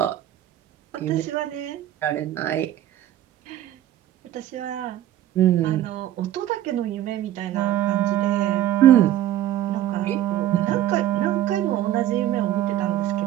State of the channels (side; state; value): left; quieter; 12.7 dB